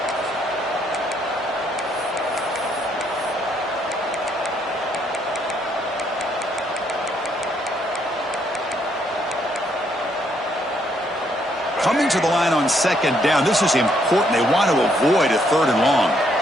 Coming to the line on second down. This is important. They want to avoid a third and long.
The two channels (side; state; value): both; normal; correlation 0.72